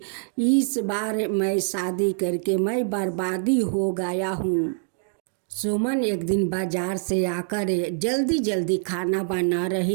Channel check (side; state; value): left; silent; digital silence